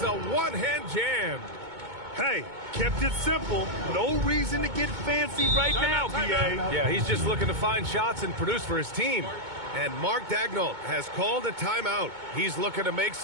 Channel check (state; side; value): late; left; 2.2 ms